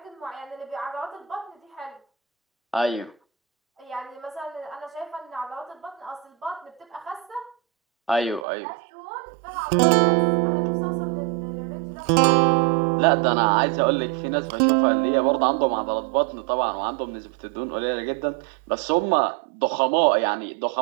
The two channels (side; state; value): left; drops out; at 8.5 s